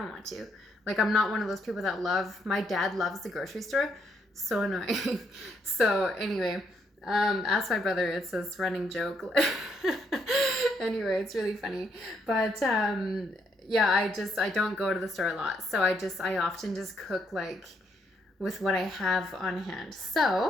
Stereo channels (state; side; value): normal; both; correlation 0.73